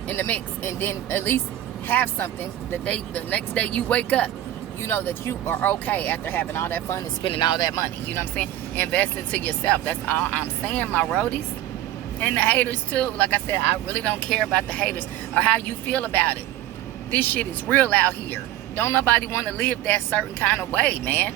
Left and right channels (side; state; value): left; quieter; 13.4 dB